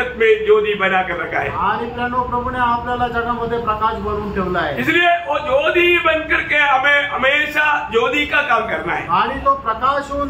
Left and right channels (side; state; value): both; identical; correlation 1.00